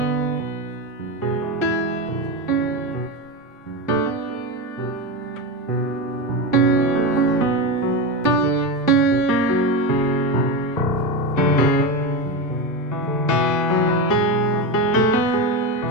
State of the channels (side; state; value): both; normal; correlation 0.17